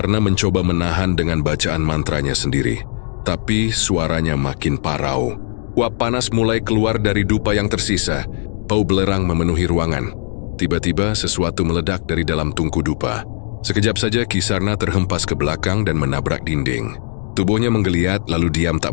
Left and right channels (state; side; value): silent; right; 67 dB below the other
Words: mencoba menahan dengan bacaan mantranya sendiri, tapi suaranya makin parau. Uap panas mulai keluar dari dupa yang tersisa. Bau belerang memenuhi ruangan. Tiba-tiba sesuatu meledak dari dalam tungku dupa. Sekejap saja Ki Sarna terhempas ke belakang dan menabrak dinding. Tubuhnya menggeliat lalu diam